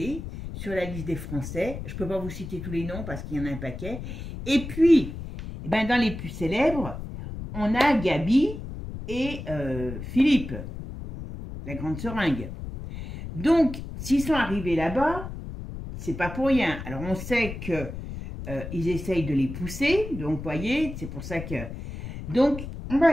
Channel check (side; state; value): left; noise; rumble, 9 dB below the sound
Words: sur la liste des Français. Je ne peux pas vous citer tous les noms parce qu'il y en a un paquet. Et puis, dans les plus célèbres, on a Gabi et Philippe, la grande seringue. Donc, s'ils sont arrivés là-bas, c'est pas pour rien. Alors, on sait que ils essayent de les pousser, donc, vous voyez, c'est pour ça que... Donc, on va